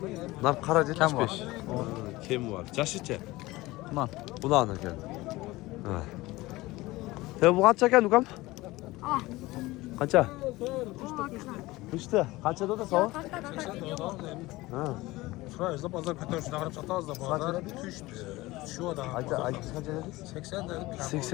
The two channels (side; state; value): right; quieter; 19.7 dB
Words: Nar qara 75. Kim var? Jashicha? Man. Bulan ekan. Ha. Bu qancha ekan ukam? Qancha? Üçte. Qanchada da so'm? Ha. Şuraya da pazar kötü şuna kadar sataz da pazar düştü. Şu da. Ayta qancha dedingiz? 80 dedim.